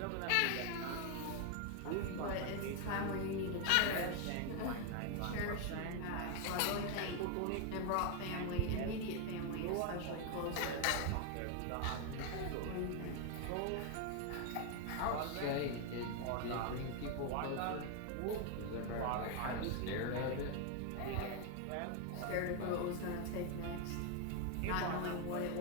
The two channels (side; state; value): both; different; correlation 0.01